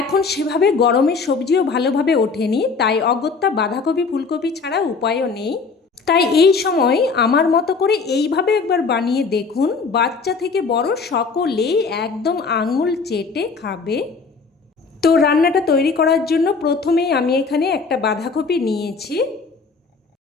এখন সেভাবে গরমের সবজিও ভালোভাবে ওঠেনি, তাই অগত্যা বাঁধাকপি ফুলকপি ছাড়া উপায়ও নেই। তাই এই সময় আমার মতো করে এইভাবে একবার বানিয়ে দেখুন, বাচ্চা থেকে বড় সকলেই একদম আঙুল চেটে খাবে। তো রান্নাটা তৈরি করার জন্য প্রথমেই আমি এখানে একটা বাঁধাকপি নিয়েছি।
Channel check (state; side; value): quieter; right; 4.7 dB